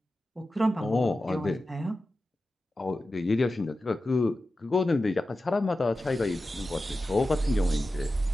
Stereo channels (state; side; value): normal; both; correlation 0.93